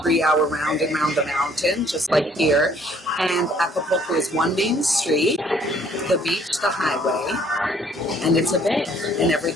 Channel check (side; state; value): both; normal; correlation 0.61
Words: 3-hour round and round the mountain, just like here. And Acapulco is one main street, the beach, the highway, and it's a bay, and